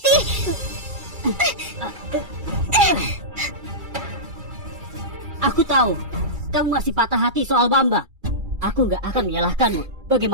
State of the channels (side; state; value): left; late; 2.3 ms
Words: Aku tahu kamu masih patah hati soal Bambang. Aku nggak akan menyalahkanmu.